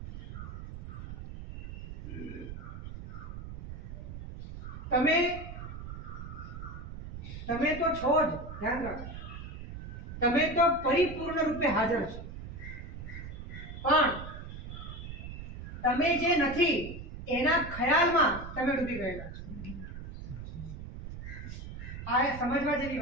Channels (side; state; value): right; noise; rumble, 10 dB below the sound